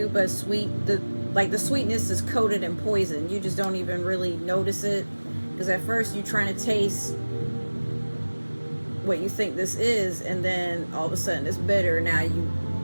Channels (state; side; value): inverted; both; correlation -1.00